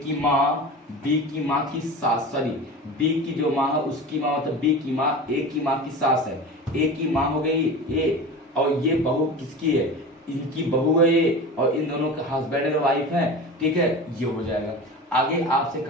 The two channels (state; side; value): normal; both; correlation 0.32